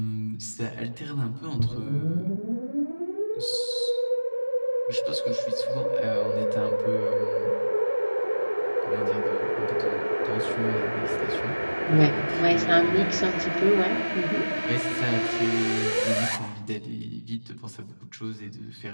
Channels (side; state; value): both; inverted; correlation -1.00